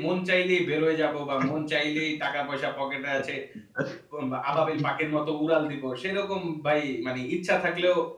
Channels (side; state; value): both; identical; correlation 1.00